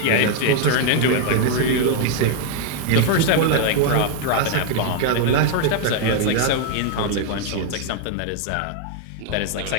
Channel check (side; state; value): both; different; correlation 0.00